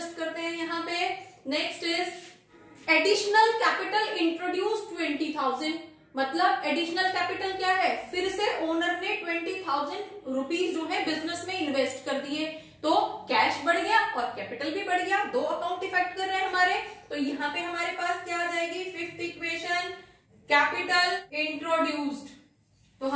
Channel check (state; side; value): identical; both; correlation 1.00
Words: करते हैं यहाँ पे। Next is additional capital introduce 20,000 मतलब एडिशनल कैपिटल क्या है, फिर से ओनर ने 20,000 रुपीज जो है बिजनेस में इन्वेस्ट कर दिए, तो कैश बढ़ गया और कैपिटल भी बढ़ गया, दो अकाउंट इफेक्ट कर रहे हैं हमारे। तो यहाँ पे हमारे पास क्या आ जाएगी, फिफ्थ इक्वेशन, कैपिटल इंट्रोड्यूस्ड। तो